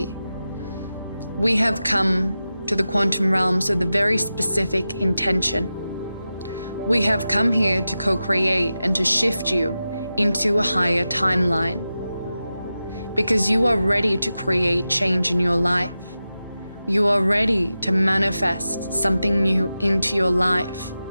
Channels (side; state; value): both; inverted; correlation -0.92